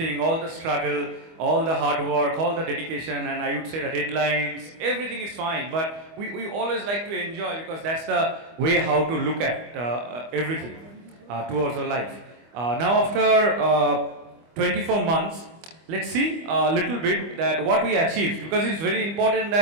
all the struggle, all the hard work, all the dedication, and I would say the deadlines, everything is fine, but we always like to enjoy, because that's the way how to look at everything towards our life. Now after 24 months, let's see a little bit that what we achieved, because it's very important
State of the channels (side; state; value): left; late; 25 ms